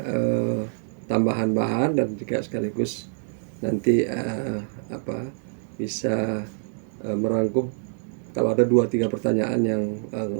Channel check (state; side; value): silent; left; 61 dB below the other